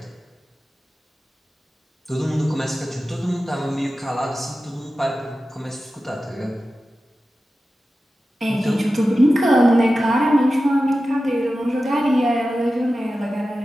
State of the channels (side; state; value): both; normal; correlation 0.93